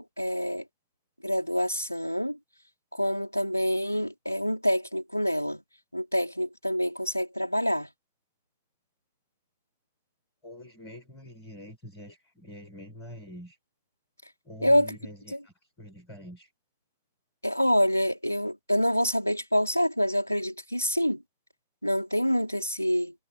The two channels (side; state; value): both; inverted; correlation -0.95